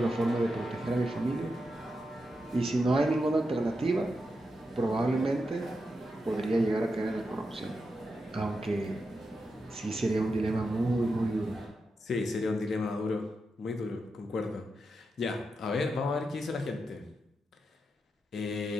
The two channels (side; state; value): both; normal; correlation 0.87